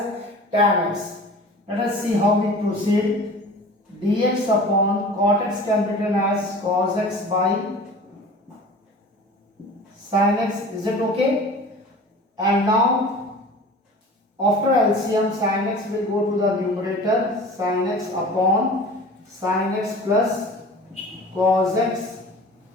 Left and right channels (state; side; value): normal; both; correlation 0.41